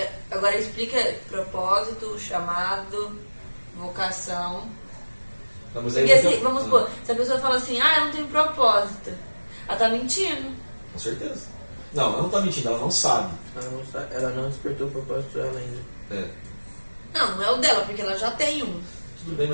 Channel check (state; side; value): inverted; both; correlation -1.00